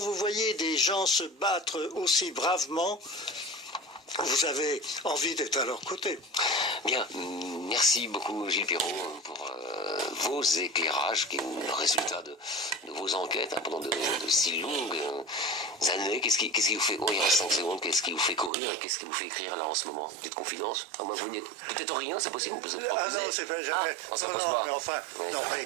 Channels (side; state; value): left; drops out; at 18.5 s